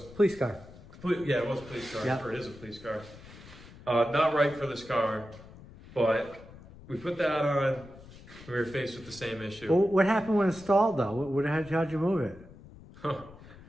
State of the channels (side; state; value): left; noise; rumble, 19 dB below the sound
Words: police car. Yeah, it was a police car. Yeah. Or it is a police car. Not right for this car, but we put that on. We were faced with the same issue. Well, what happened when it stalled, though? How'd you move it?